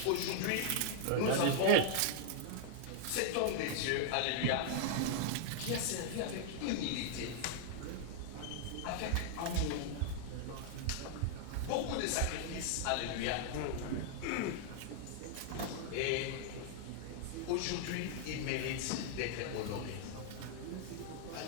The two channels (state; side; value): different; both; correlation 0.00